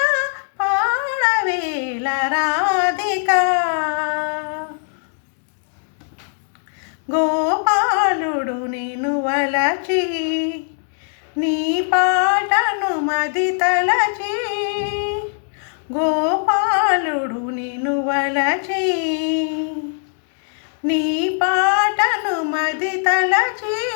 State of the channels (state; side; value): silent; right; 63 dB below the other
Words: పాడవేల రాధిక గోపాలుడు నిన్ను వలచి నీ పాటను మది తలచి గోపాలుడు నిన్ను వలచి నీ పాటను మది తలచి